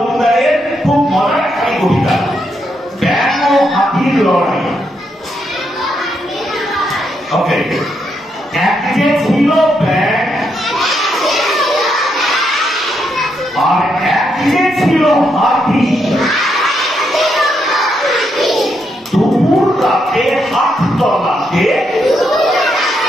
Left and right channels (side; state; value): both; normal; correlation 0.79